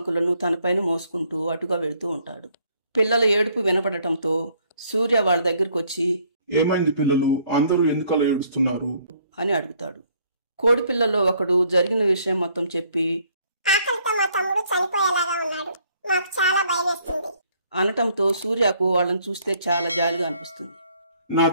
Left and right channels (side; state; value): both; inverted; correlation -0.65